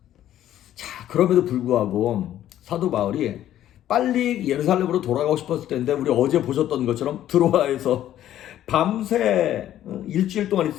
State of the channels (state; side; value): quieter; right; 12.1 dB